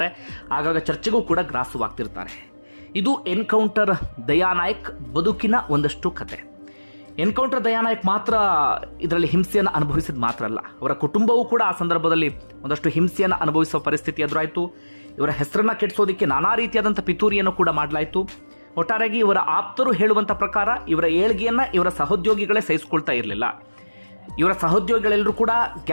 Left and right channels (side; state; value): both; inverted; correlation -1.00